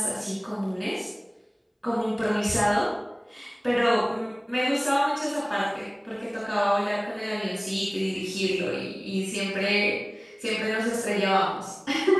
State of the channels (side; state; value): both; identical; correlation 1.00